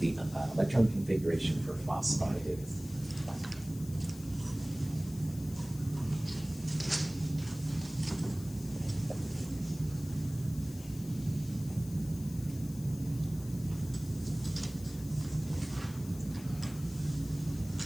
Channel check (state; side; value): noise; left; hiss, 17 dB below the sound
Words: electron configuration for phosphide is.